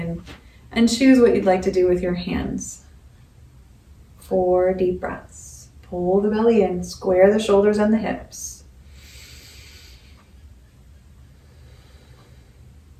and choose what you'd like to do with your hands. 4 deep breaths. Pull the belly in, square the shoulders and the hips.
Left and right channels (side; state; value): both; identical; correlation 1.00